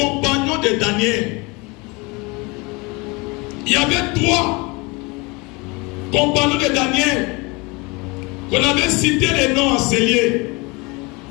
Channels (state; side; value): quieter; right; 27.0 dB